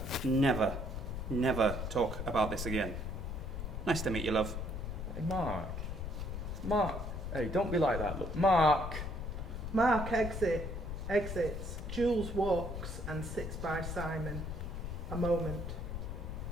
never, never talk about this again. Nice to meet you, love. Hey, Mark. Mark. Hey, don't be like that. Look, Mark. Mark exits. Jules walks and sits by Simon. A moment.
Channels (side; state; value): left; noise; rumble, 5 dB below the sound